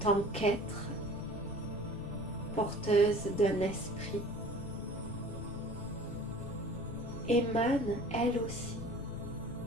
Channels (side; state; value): left; noise; rumble, 10 dB below the sound